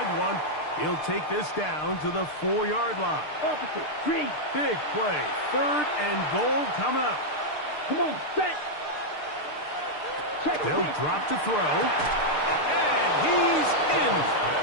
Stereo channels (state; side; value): late; right; 6.6 ms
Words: one. He'll take this down to the 4-yard line. Opposite. Green. Big play. Third and goal coming up. Come on, set. Check. They'll drop to throw. And he's in.